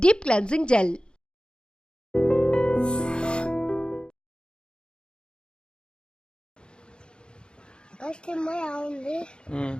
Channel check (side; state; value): right; late; 0.051 ms